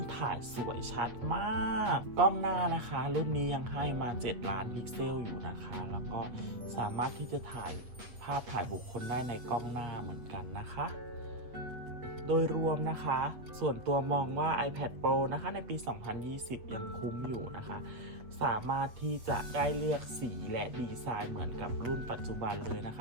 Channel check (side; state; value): left; late; 8.2 ms